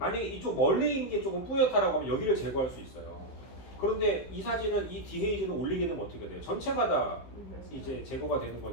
이쪽 멀리 있는 게 조금 뿌옇다라고 하면 여기를 제거할 수 있어요. 그런데 이 사진은 이 디헤이즈는 올리게 되면 어떻게 돼요? 전체가 다 이제 제거가 되는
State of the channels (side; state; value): right; late; 15 ms